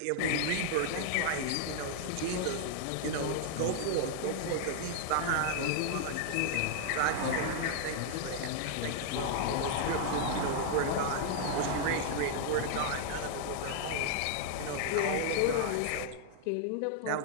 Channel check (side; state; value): both; different; correlation -0.01